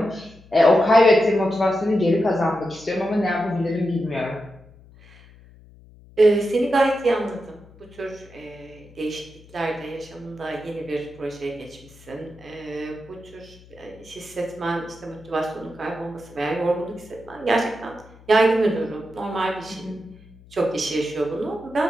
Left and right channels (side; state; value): left; noise; hum, 23 dB below the sound